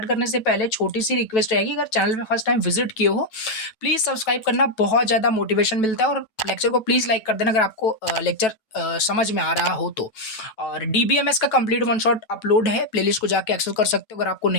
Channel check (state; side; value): late; right; 9.1 ms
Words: करने से पहले छोटी सी रिक्वेस्ट रहेगी, अगर चैनल पे फर्स्ट टाइम विजिट किए हो प्लीज सब्सक्राइब करना, बहुत ज्यादा मोटिवेशन मिलता है। और लेक्चर को प्लीज लाइक कर देना अगर आपको लेक्चर समझ में आ रहा हो तो। और DBMS का कंप्लीट वन शॉट अपलोड है, प्लेलिस्ट को जाके एक्सेस कर सकते हो। अगर आपको